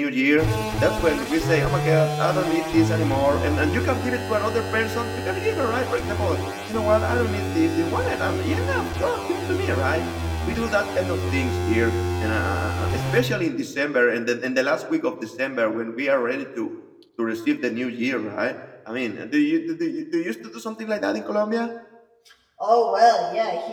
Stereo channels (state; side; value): identical; both; correlation 1.00